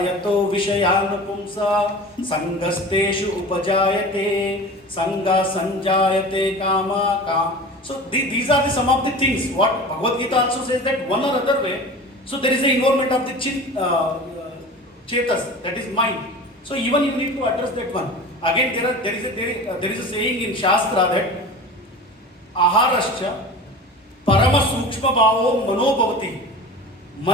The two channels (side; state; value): both; normal; correlation 0.36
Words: vishayan pumsa sangasteshu upajayate sanga sanjayate kama kam. So these are some of the things what Bhagavad Gita also says that one or other way. So there is the involvement of the chetas, that is mind. So even you need to address that one. Again there is a saying in Shastra that aharascha parama sukshma bhavo mano bhavati.